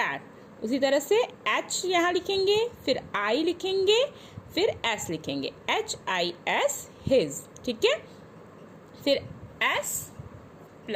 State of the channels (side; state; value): both; identical; correlation 1.00